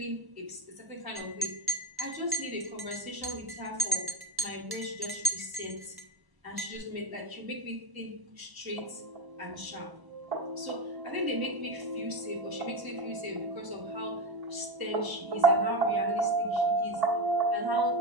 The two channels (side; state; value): left; late; 1.0 ms